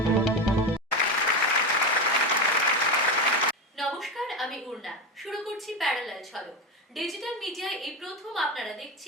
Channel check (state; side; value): normal; both; correlation 0.16